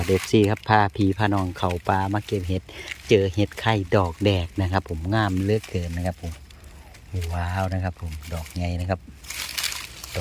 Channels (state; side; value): identical; both; correlation 1.00